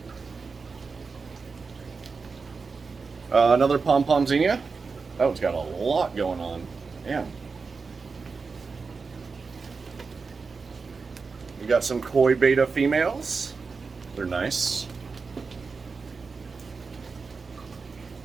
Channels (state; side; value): quieter; left; 4.7 dB